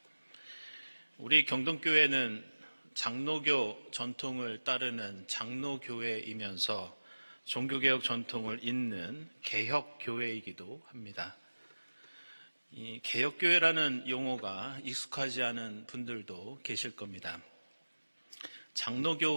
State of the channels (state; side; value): inverted; both; correlation -1.00